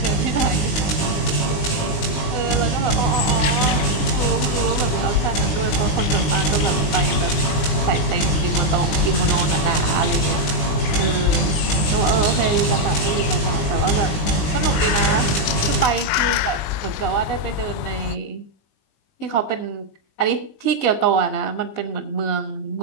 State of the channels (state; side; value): late; right; 19 ms